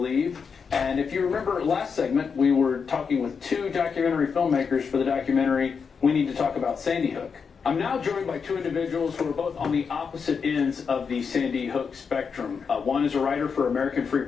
And if you remember last segment, we were talking with two documentary filmmakers for the documentary We Need to Talk About Sandy Hook. I'm now joined by two individuals who are both on the opposite ends of the Sandy Hook spectrum. One is a writer for American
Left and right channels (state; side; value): quieter; right; 5.9 dB